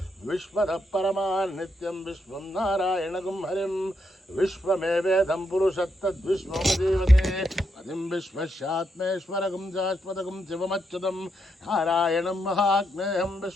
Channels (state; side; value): normal; both; correlation 0.80